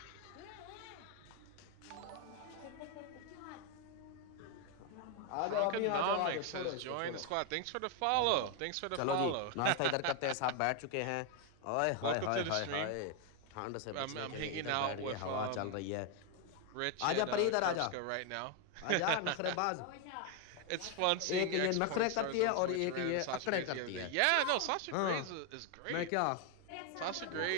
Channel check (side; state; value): both; different; correlation 0.01